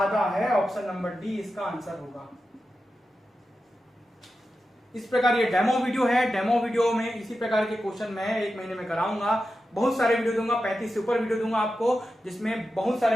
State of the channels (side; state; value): both; normal; correlation 0.91